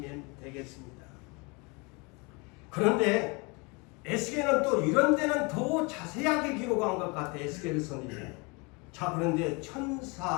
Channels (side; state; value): right; quieter; 29.1 dB